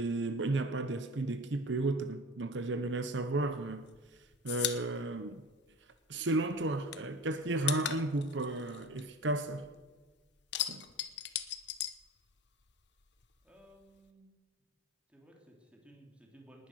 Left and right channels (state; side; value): normal; both; correlation 0.36